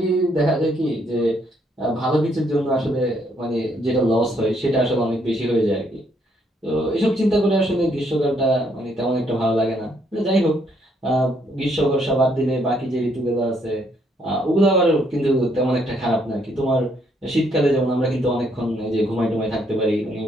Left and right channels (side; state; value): both; normal; correlation 0.71